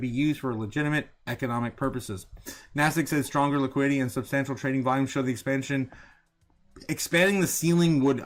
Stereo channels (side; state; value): both; identical; correlation 1.00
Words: be used for legitimate economic purposes. NASDAQ says stronger liquidity and substantial trading volume show the expanding the ceiling